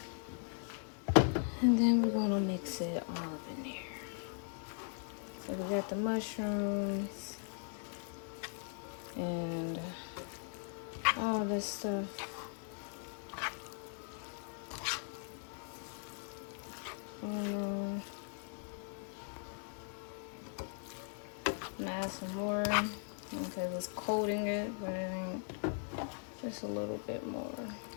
And then we're gonna mix it all up in there. So we got the mushrooms and all this stuff. I'm gonna add some more because it's coating it, but it ain't. Just a little bit more.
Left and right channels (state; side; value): silent; right; 52 dB below the other